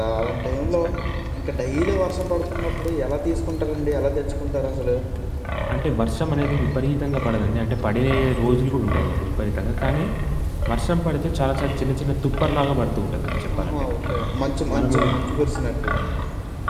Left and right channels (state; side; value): identical; both; correlation 1.00